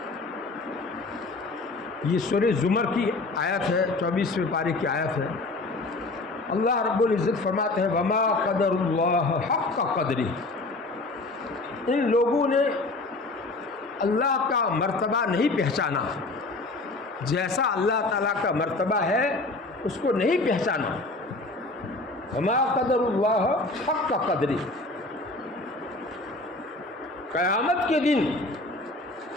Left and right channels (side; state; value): right; quieter; 3.1 dB